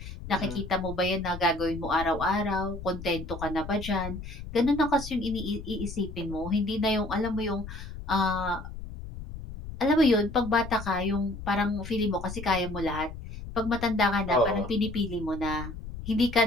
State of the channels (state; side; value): noise; left; rumble, 11 dB below the sound